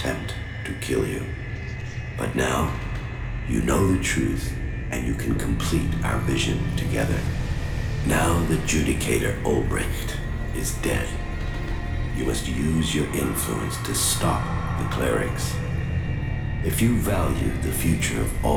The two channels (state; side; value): identical; both; correlation 1.00